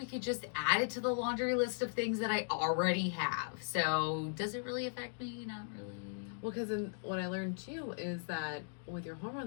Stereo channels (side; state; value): right; silent; digital silence